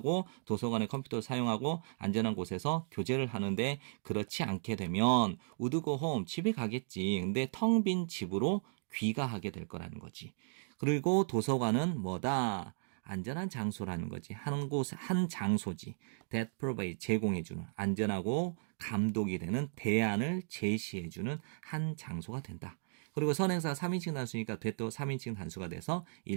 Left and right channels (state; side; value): silent; left; digital silence